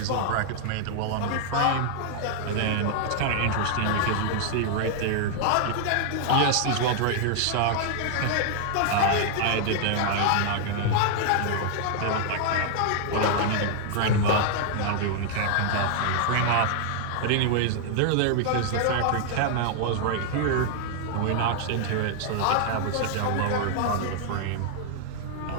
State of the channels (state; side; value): different; both; correlation 0.00